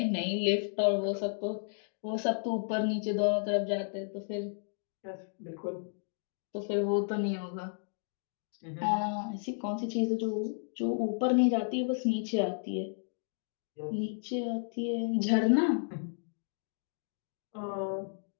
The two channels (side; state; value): right; silent; digital silence